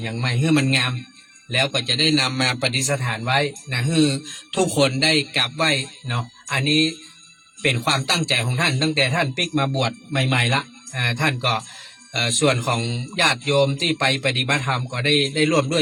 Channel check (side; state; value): both; identical; correlation 1.00